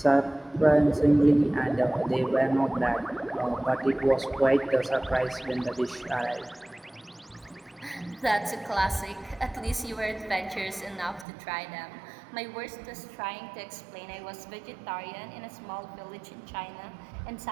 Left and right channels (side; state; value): left; drops out; at 11.2 s